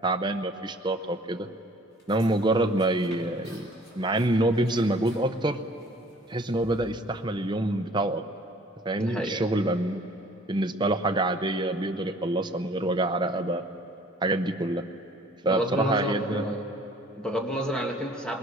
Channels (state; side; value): normal; both; correlation 0.53